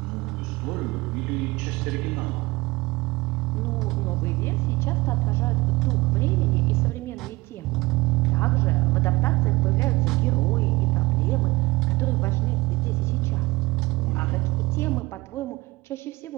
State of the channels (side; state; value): left; quieter; 21.9 dB